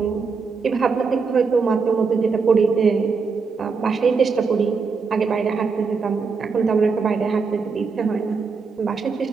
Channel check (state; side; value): quieter; left; 5.0 dB